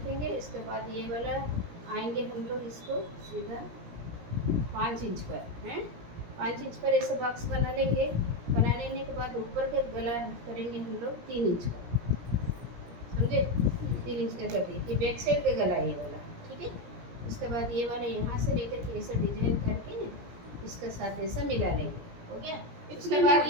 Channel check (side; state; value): left; late; 17 ms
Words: इसके बाद ये वाला आएंगे हम लोग इसको सीधा 5 इंच पर, हैं 5 इंच पर ऐसा बॉक्स बना लेंगे। बना लेने के बाद ऊपर के गला करेंगे हम लोग 3 इंच का, समझे। 3 इंच का कर दिए, ये बैक साइड का गला है ये वाला, ठीक है। उसके बाद ये वाला यहाँ से लेकर के ऐसा डिजाइन करके ना इसके साथ ऐसा मिला लेंगे, हो गया। उसके बाद